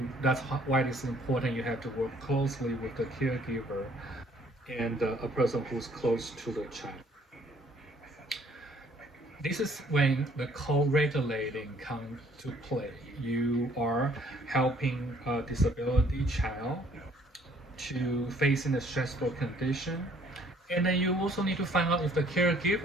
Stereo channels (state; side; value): normal; both; correlation 0.60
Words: Why it's important you have to work closely with the caregiver and a person who's close to the child. This is when the co-regulating comes to play. You are helping a disability child to facing a stressful condition, and then you also need to find out if the